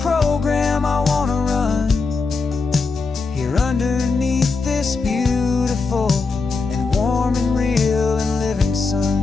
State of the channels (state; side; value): quieter; right; 4.3 dB